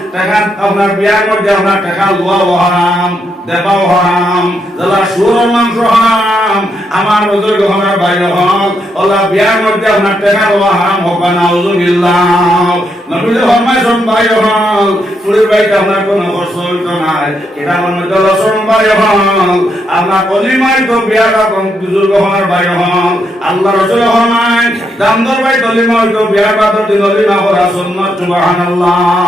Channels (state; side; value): normal; both; correlation 0.79